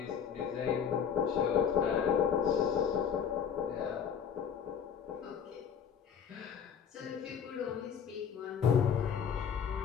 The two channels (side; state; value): right; quieter; 7.6 dB